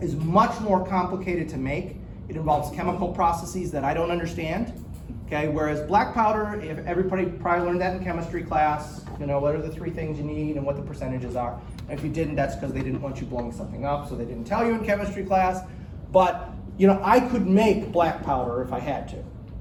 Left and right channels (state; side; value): identical; both; correlation 1.00